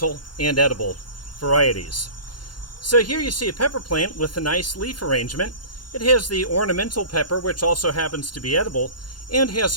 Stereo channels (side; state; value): right; late; 0.71 ms